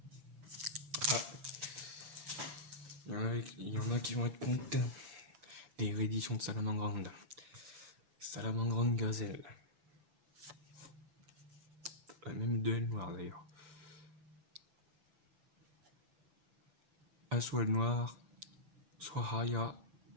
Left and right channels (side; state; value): left; late; 6.0 ms